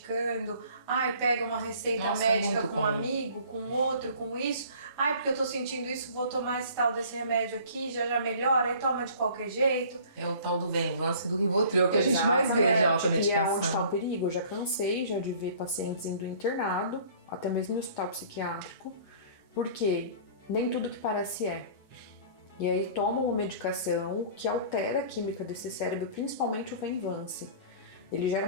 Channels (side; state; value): both; inverted; correlation -0.49